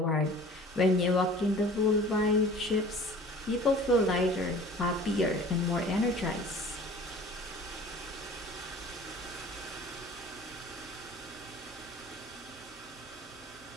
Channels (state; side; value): normal; both; correlation 0.45